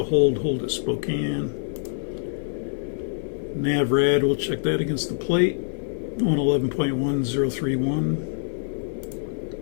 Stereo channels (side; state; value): right; silent; 59 dB below the other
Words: hold at Spokane. Nav rad, we'll check that against the plate.